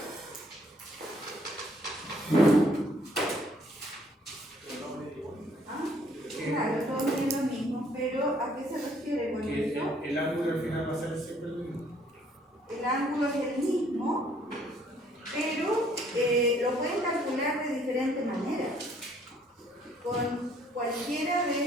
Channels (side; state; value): both; normal; correlation 0.63